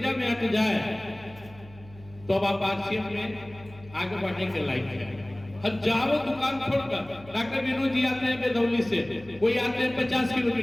में आके जाए तो अब आप आरसीएम में आगे बढ़ने के लायक है। हजारों दुकान छोड़कर डॉक्टर विनोद जी आते हैं बेदौली से, कोई आते हैं 50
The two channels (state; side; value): noise; right; hum, 20 dB below the sound